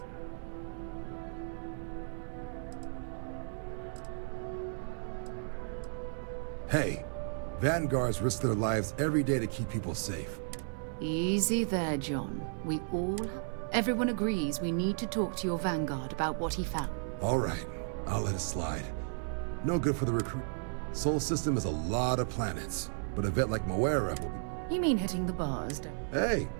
Hey, Vanguards risk their lives every day to keep people safe. Easy there, John. We all have... Everyone agrees we need to talk to your Vanguard about what he found. All right, I'll let it slide. No good for the recruit. Sol system is a lot of planets, but a vet like Moera will be... You mean hitting the bars, don't you? Hey,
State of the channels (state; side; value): silent; left; digital silence